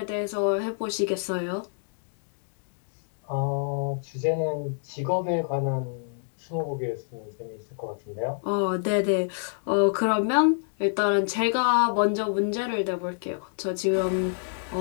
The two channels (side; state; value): right; silent; digital silence